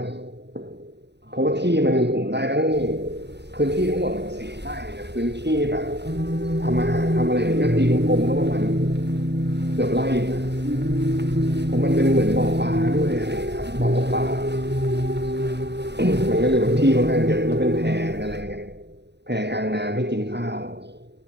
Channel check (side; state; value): left; late; 0.50 ms